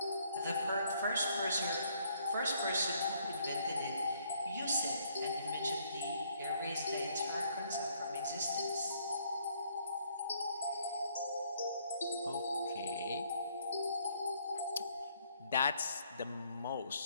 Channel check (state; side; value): inverted; both; correlation -0.67